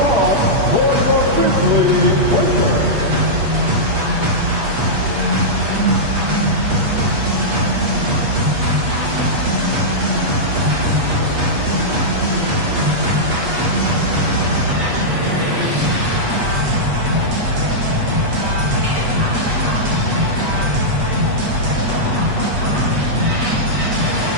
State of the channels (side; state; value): left; late; 8.3 ms